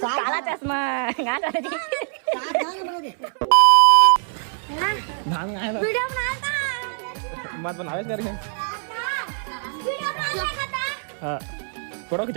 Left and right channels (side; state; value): left; silent; digital silence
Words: काला चश्मा गा कर दी धान आए वीडियो बनाता मत बनावे करके वीडियो बनाता हां फोटो